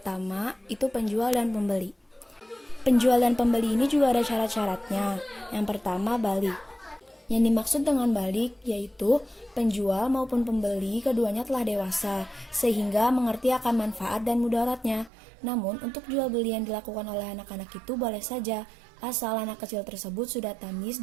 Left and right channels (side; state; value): left; drops out; at 15.1 s